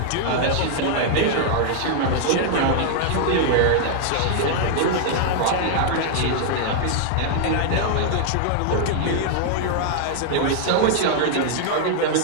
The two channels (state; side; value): different; both; correlation -0.01